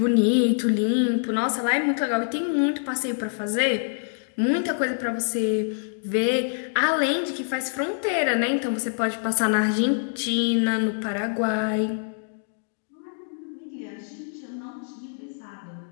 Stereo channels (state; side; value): silent; right; digital silence